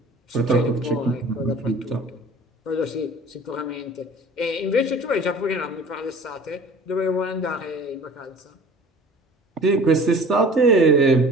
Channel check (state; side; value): normal; both; correlation 0.45